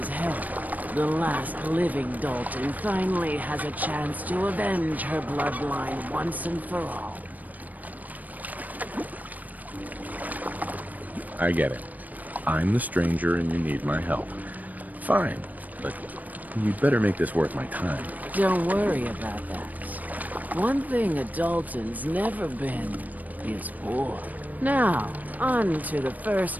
help, the last living Dalton finally has a chance to avenge her bloodline once and for all. I get it. I'm the stranger and you need my help. Fine, but you'd better make this worth my time. Don't worry about that. One thing a Dalton's never been is war. Now, on to the first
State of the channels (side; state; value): left; late; 0.079 ms